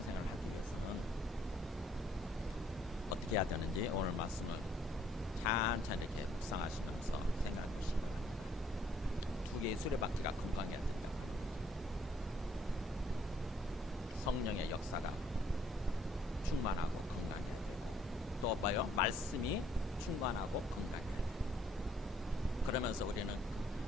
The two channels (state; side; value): normal; both; correlation 0.64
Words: 하기 위해서는 어떻게 해야 되는지 오늘 말씀을 찬찬히 이렇게 묵상하시면서 생각해 보시기 바랍니다. 두 개의 수레바퀴가 건강해야 된다. 성령의 역사가 충만하고 건강해야 되고, 또 봐요, 말씀이 충만하고 건강해야 돼요. 그러면서 우리는